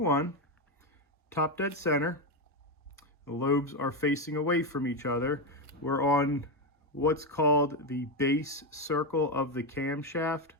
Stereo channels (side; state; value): both; normal; correlation 0.08